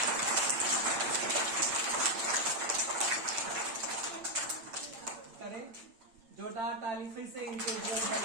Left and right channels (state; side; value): late; left; 8.8 ms